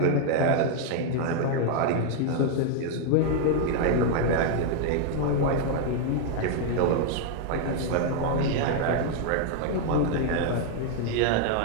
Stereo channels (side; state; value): both; different; correlation 0.00